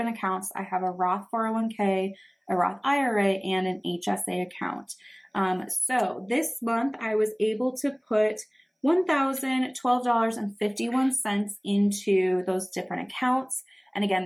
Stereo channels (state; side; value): identical; both; correlation 1.00